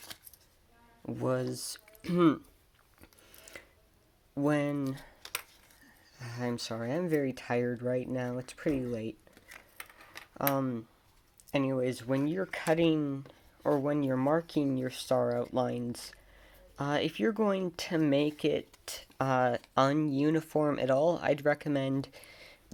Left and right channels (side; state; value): both; identical; correlation 1.00